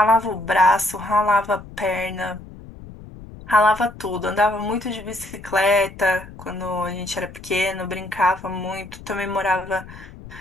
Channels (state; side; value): noise; left; rumble, 16 dB below the sound